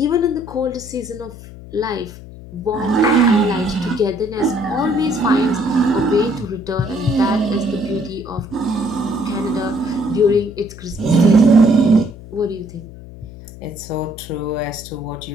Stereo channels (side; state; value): left; noise; hum, 16 dB below the sound